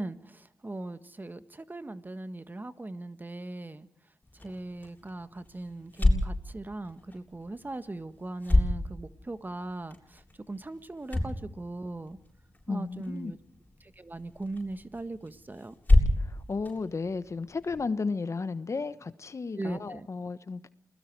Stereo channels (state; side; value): normal; both; correlation 0.95